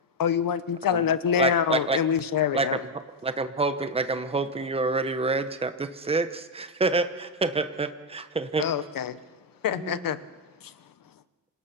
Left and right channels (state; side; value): normal; both; correlation 0.03